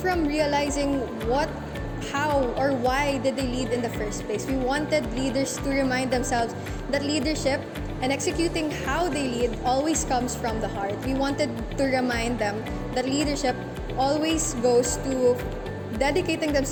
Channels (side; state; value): both; identical; correlation 1.00